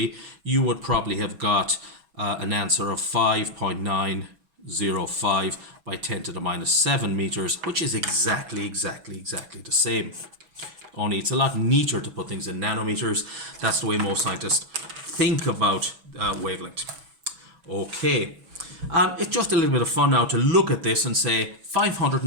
you would probably have got an answer of 5.905 by 10 to the minus 7 meters, which is exactly the same. Only it's a lot neater to put things in nanometers. That's the way most scientists think about wavelength. Okay, it's just a little bit of fun now to look at this and say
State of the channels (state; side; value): late; left; 6.1 ms